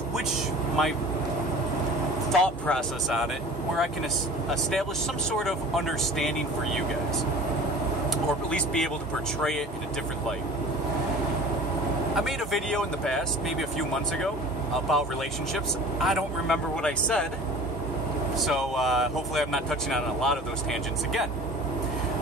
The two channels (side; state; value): both; normal; correlation 0.42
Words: my thought process on it where I can establish some sort of understanding for you guys, or at least be able to portray it in a different light. I made a video in the past, maybe a few months ago, about relationships. I don't remember what I said, so hopefully I'm not touching on a lot of those tangents again.